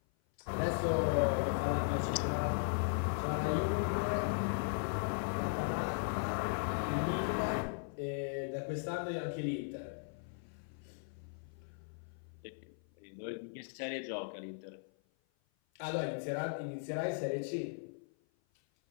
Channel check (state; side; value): silent; right; 53 dB below the other